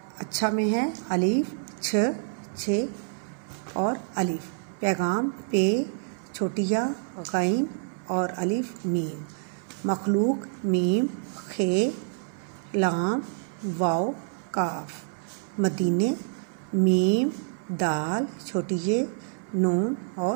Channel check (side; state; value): left; silent; 59 dB below the other